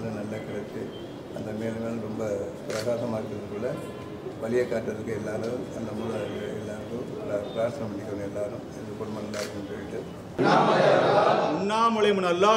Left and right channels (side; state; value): right; noise; hum, 30 dB below the sound